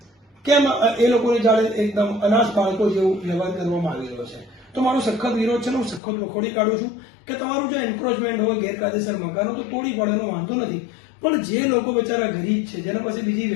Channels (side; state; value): right; drops out; at 6.0 s